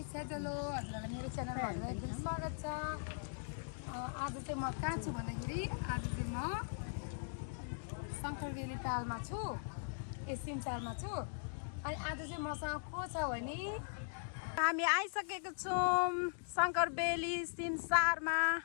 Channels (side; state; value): right; silent; digital silence